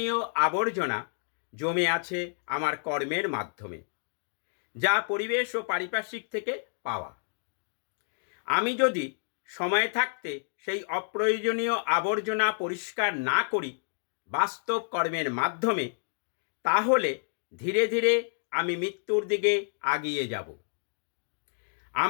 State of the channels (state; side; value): silent; right; digital silence